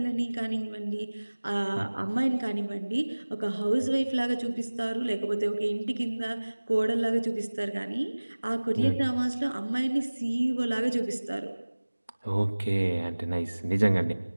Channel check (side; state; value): both; inverted; correlation -1.00